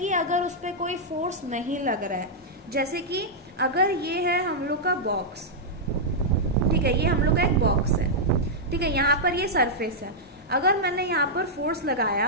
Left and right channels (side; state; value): both; normal; correlation -0.08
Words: अगर उस पर कोई फोर्स नहीं लग रहा है। जैसे कि अगर ये है हम लोग का बॉक्स, ठीक है, ये हम लोग का एक बॉक्स है, ठीक है, यहाँ पर ये सरफेस है। अगर मैंने यहाँ पर फोर्स